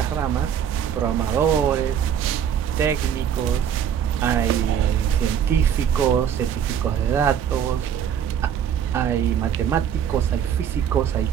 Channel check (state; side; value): quieter; left; 8.7 dB